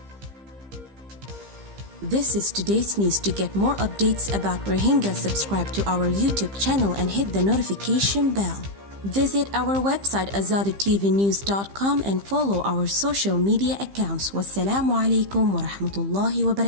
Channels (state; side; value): late; left; 15 ms